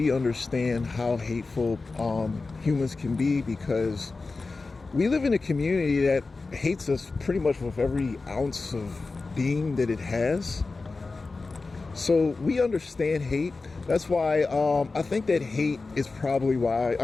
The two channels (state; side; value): quieter; right; 3.8 dB